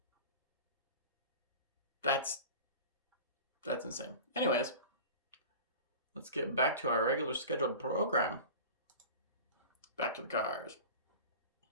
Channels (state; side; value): inverted; both; correlation -0.35